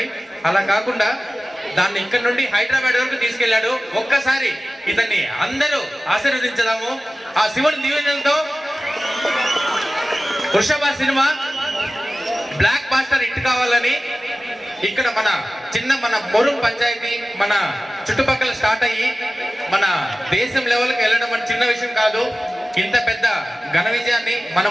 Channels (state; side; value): normal; both; correlation 0.96